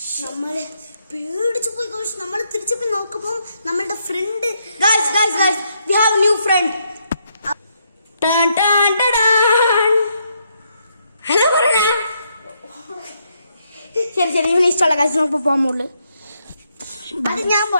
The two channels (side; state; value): both; inverted; correlation -0.76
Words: പേടിച്ചു പോയി. നമ്മൾ തിരിച്ചു പോയി നോക്കുമ്പോൾ നമ്മളുടെ friend we have a new friend. Hello പറയണ. ശരി ഇവന് ഇഷ്ടമുള്ള കാര്യം നമുക്ക് പോകാൻ മുകളിൽ.